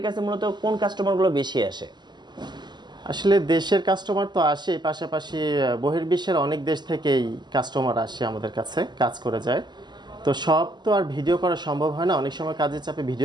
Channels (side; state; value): left; late; 0.21 ms